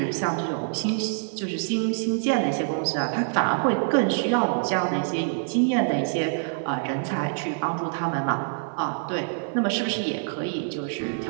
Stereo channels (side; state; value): left; silent; digital silence